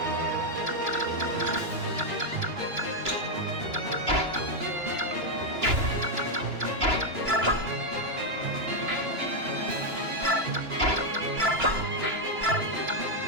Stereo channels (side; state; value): left; late; 2.9 ms